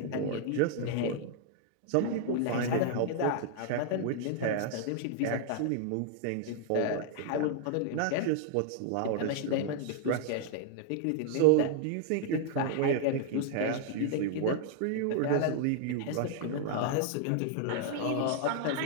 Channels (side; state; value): both; different; correlation 0.00